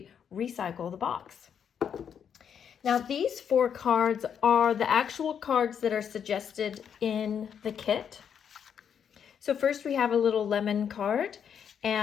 recycle the box. Now, these 4 cards are the actual cards that are suggested in the kit. So first we have a little lemon card,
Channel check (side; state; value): right; quieter; 7.9 dB